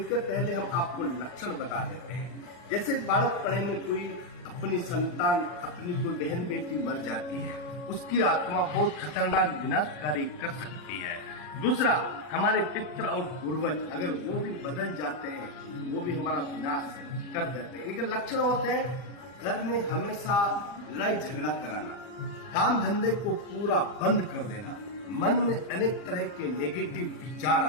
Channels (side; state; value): right; late; 40 ms